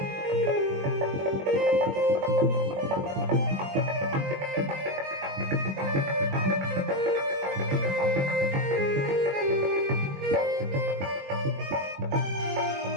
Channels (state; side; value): late; left; 21 ms